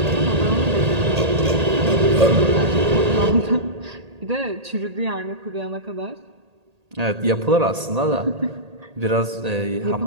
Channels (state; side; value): late; left; 1.8 ms